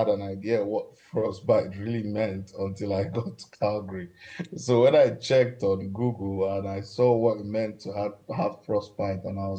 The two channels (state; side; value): identical; both; correlation 1.00